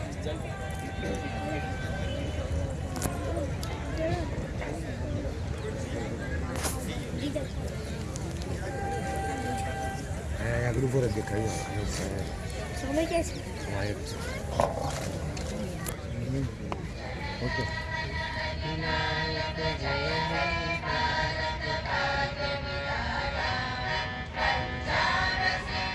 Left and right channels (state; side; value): identical; both; correlation 1.00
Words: ग्रुप दिखाइए समय कैसे ओके